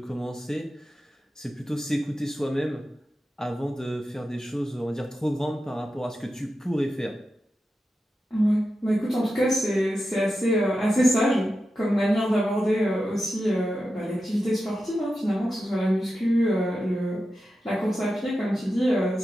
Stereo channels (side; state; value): both; normal; correlation 0.90